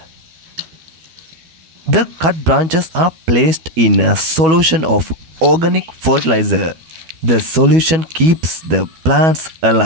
The cut branches are placed in a solution of organic fertilizer. The solution keeps the plants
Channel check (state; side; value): late; left; 12 ms